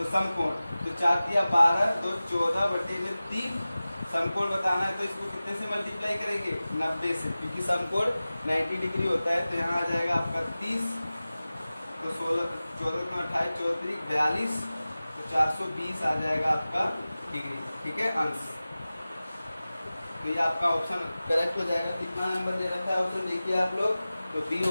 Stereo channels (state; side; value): inverted; both; correlation -0.96